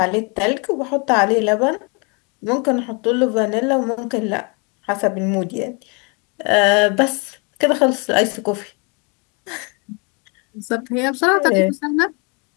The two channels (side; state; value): right; quieter; 32.8 dB